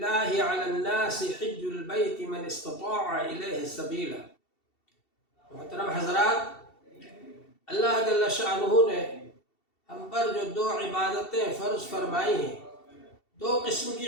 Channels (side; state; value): right; late; 2.7 ms